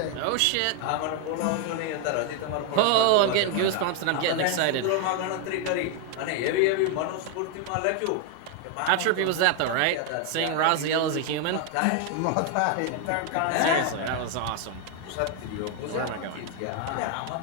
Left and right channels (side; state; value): both; different; correlation 0.00